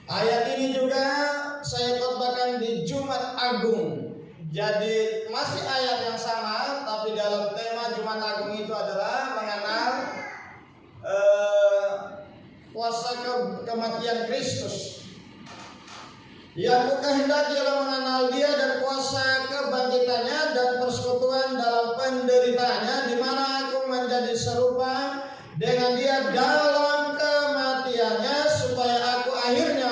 Ayat ini juga saya khotbahkan di Jumat Agung. Jadi masih ayat yang sama, tapi dalam tema Jumat Agung itu adalah mengenal kuasa kematian Kristus. Yang kukehendaki ialah mengenal Dia dan kuasa kebangkitannya dan persekutuan dalam penderitaannya, di mana aku menjadi serupa dengan Dia dalam kematiannya, supaya aku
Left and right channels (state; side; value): identical; both; correlation 1.00